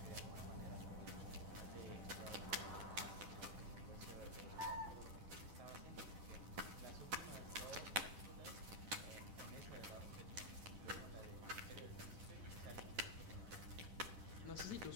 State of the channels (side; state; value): left; late; 10 ms